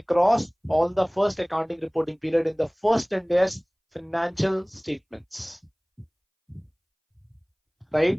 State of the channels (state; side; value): identical; both; correlation 1.00